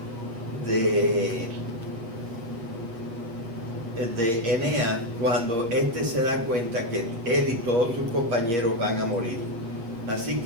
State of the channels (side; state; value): left; late; 8.6 ms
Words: de Eneas cuando éste se da cuenta que él y todos sus compañeros van a morir. Así